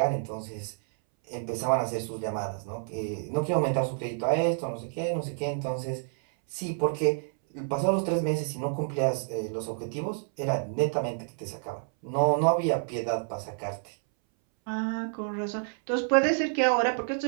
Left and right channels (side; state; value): left; silent; 59 dB below the other